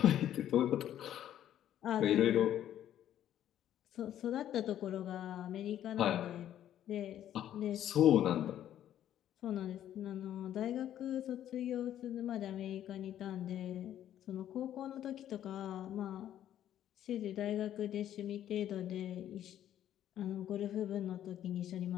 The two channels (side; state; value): right; quieter; 11.2 dB